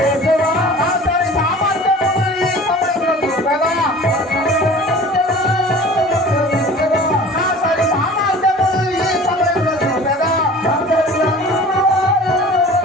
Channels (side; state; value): both; normal; correlation 0.43